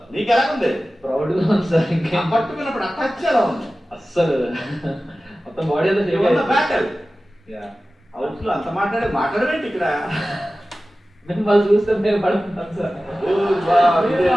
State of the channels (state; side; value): normal; both; correlation 0.96